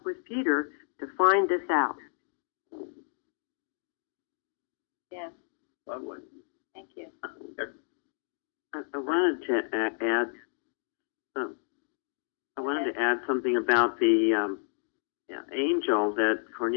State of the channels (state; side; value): silent; right; digital silence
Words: with Peter to find this out. Yes. Lovely. Thank you. I wanted to add. I wanted to add something about the angel that